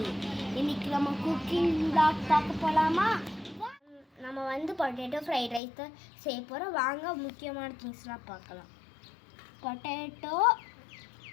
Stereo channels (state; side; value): drops out; right; at 5.6 s